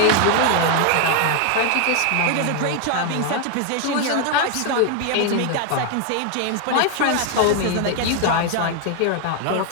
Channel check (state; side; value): different; both; correlation 0.01